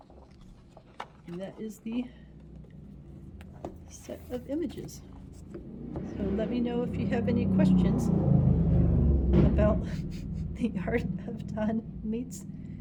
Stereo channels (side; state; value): both; identical; correlation 1.00